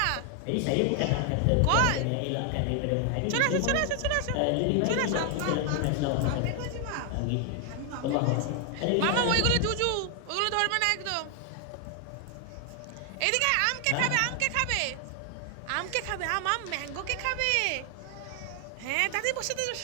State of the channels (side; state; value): both; different; correlation 0.00